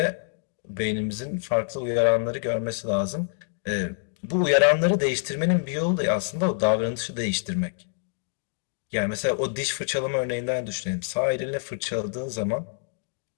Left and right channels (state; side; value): silent; right; digital silence